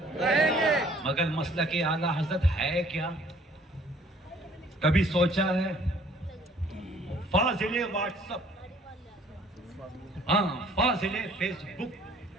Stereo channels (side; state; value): both; normal; correlation 0.58